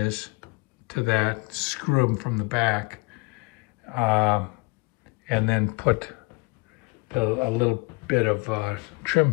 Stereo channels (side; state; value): right; quieter; 27.6 dB